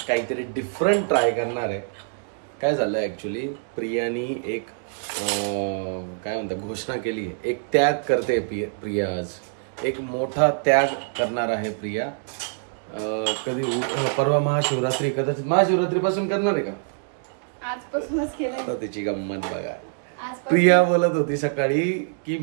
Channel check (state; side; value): silent; left; digital silence